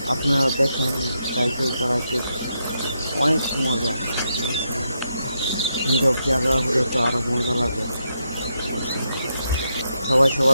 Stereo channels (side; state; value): both; inverted; correlation -0.82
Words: আপনারা দেখেন সাইকেল চালাইতে অনেক মজা, বুঝছেন? নীরব জায়গা হলে তো আরো মজা লাগে, বুঝছেন? সবাই